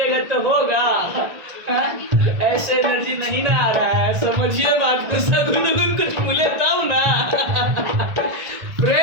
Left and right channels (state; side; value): late; left; 1.6 ms